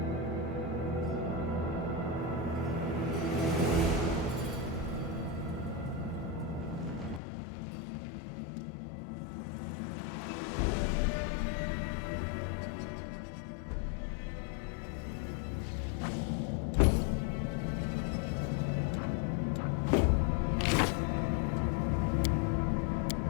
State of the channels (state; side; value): drops out; right; at 7.2 s